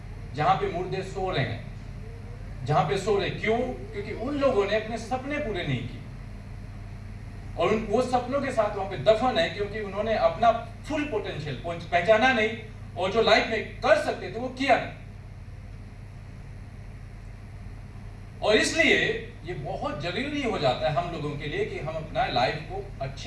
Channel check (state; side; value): identical; both; correlation 1.00